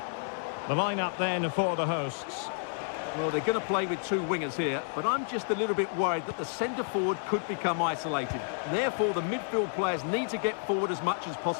The lineup then for the hosts. Well, they're going to play with two wingers here, but I'm just a little bit worried that the centre-forward could become isolated. Therefore, the midfield players need to get forward as much as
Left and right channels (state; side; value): silent; right; digital silence